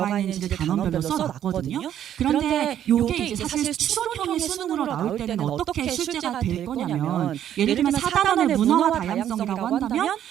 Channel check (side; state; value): left; quieter; 10.6 dB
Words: 있는지를 단원별로 써놨거든요. 그런데 이게 이제 사실 추론형의 수능으로 나올 때는 어떻게 출제가 될 거냐면 예를 들면 4단원의 문화와 다양성이라고 한다면